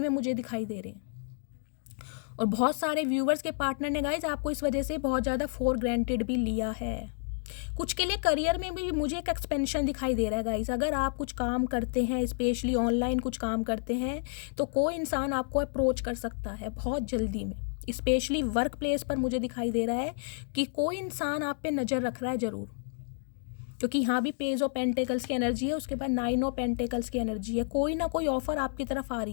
मुझे दिखाई दे रहे हैं। और बहुत सारे व्यूवर्स के पार्टनर ने गाइज आपको इस वजह से बहुत ज़्यादा फॉर ग्रांटेड भी लिया है। कुछ के लिए करियर में भी मुझे एक एक्सपेंशन दिखाई दे रहा है गाइस। अगर आप कुछ काम करते हैं, स्पेशली ऑनलाइन कुछ काम करते हैं, तो कोई इंसान आपको अप्रोच कर सकता है बहुत जल्दी में। स्पेशली वर्क प्लेस पर मुझे दिखाई दे रहा है कि कोई इंसान आप पे नज़र रख रहा है ज़रूर, क्योंकि यहाँ भी पेज ऑफ पेंटिकल्स की एनर्जी है, उसके बाद 9 ऑफ पेंटिकल्स की एनर्जी है। कोई ना कोई ऑफर आपकी तरफ आ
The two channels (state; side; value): silent; right; 58 dB below the other